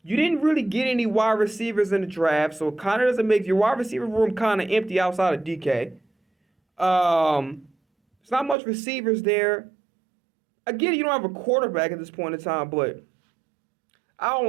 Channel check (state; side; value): drops out; left; at 8.6 s